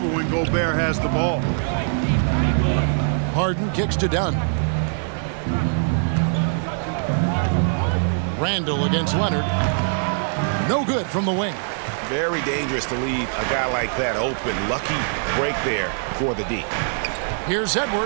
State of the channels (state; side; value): silent; left; digital silence